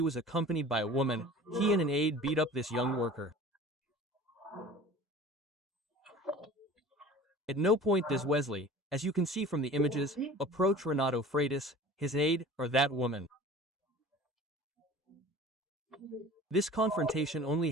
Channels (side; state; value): both; normal; correlation 0.42